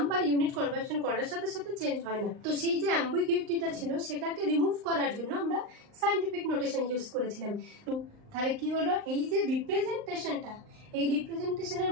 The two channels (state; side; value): late; left; 38 ms